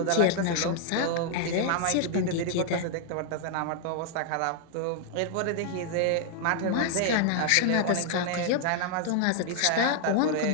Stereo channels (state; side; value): different; both; correlation 0.00